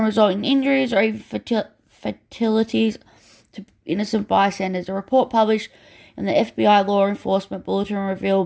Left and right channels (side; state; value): both; identical; correlation 1.00